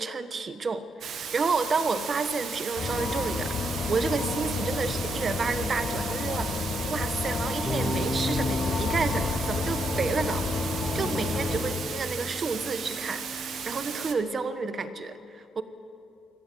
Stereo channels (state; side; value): normal; both; correlation 0.79